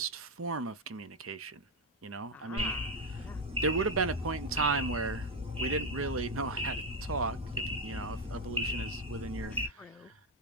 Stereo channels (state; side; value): normal; both; correlation 0.07